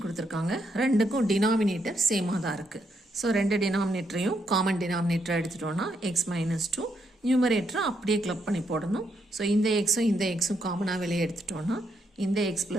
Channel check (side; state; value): both; normal; correlation 0.78